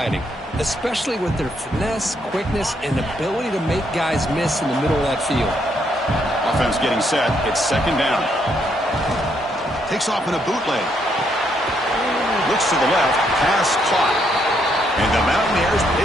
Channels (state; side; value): normal; both; correlation 0.74